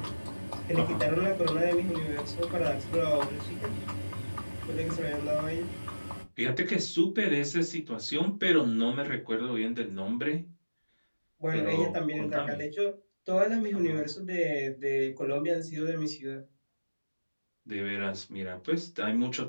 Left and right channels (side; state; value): both; inverted; correlation -1.00